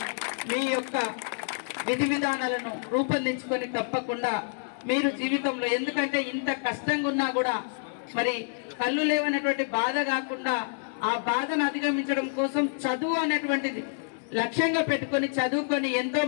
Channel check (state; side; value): silent; right; digital silence